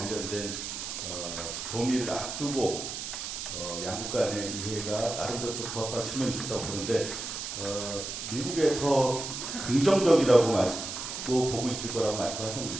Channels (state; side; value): noise; right; hiss, 6 dB below the sound